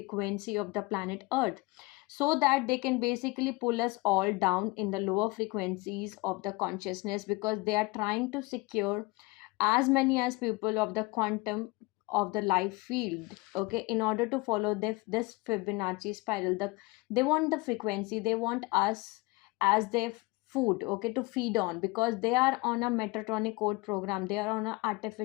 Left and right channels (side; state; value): right; quieter; 24.6 dB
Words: of the planet Earth, so that they can basically pull us all down in the lower frequencies of the consciousness, because they are trying to secure as many as people of the quantum of the life field. Okay, in order to follow this Fibonacci spiral, they want the frequency, they want us as their food, okay, to feed on, because they are on a Metatronic code program, they are on a